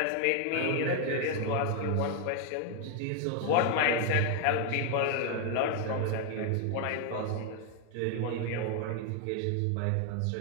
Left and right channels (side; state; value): both; different; correlation 0.00